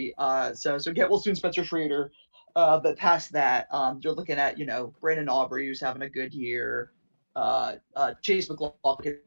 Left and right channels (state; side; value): inverted; both; correlation -1.00